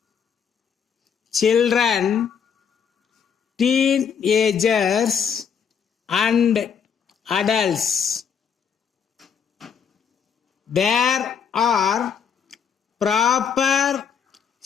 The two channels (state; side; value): quieter; right; 7.2 dB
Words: children, teenagers, and adults. There are proper